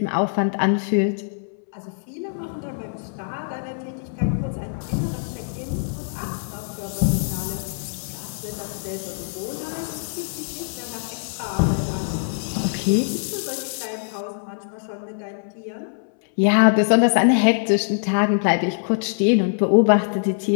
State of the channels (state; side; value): silent; right; 63 dB below the other